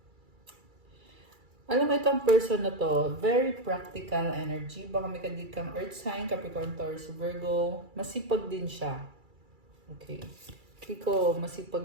Alam mo itong person na to, very practical energy. Baka may kadit kang Earth sign, Capricorn, Taurus, Virgo. Masipag din siya. Okay. Kiko,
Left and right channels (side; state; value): left; late; 2.3 ms